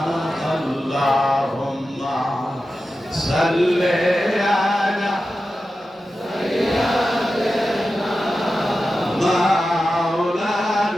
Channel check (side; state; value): both; normal; correlation 0.92